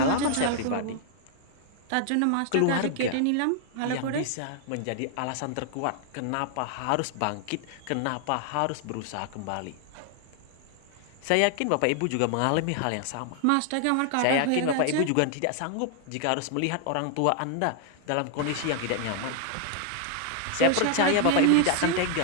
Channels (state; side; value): different; both; correlation 0.00